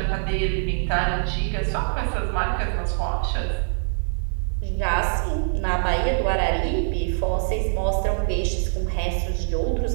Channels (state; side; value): silent; left; digital silence